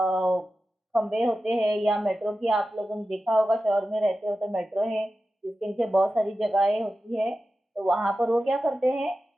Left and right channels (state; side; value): normal; both; correlation 0.93